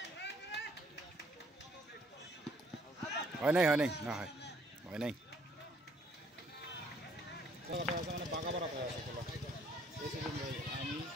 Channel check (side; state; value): both; normal; correlation 0.63